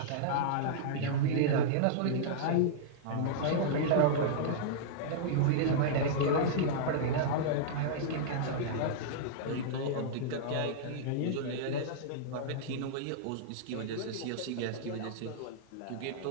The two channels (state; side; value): different; both; correlation -0.02